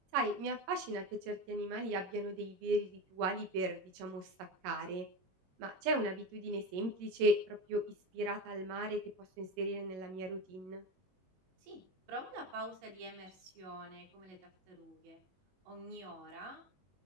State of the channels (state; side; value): late; left; 21 ms